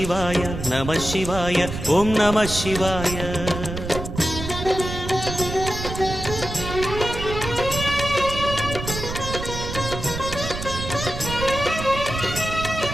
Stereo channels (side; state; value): right; noise; rumble, 7 dB below the sound